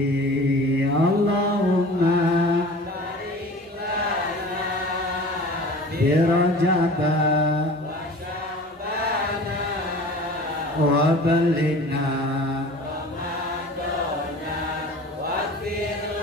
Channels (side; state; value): both; normal; correlation 0.41